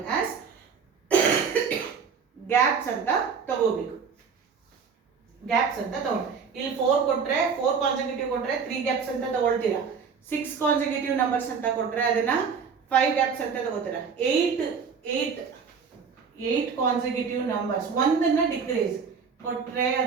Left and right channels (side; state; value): left; quieter; 6.0 dB